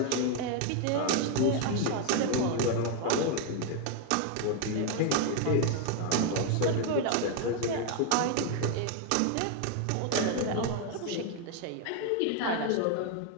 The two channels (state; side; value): different; both; correlation 0.01